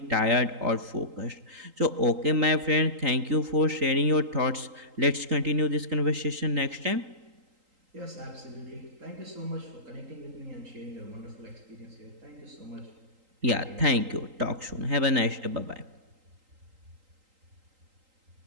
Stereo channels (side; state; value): left; late; 3.8 ms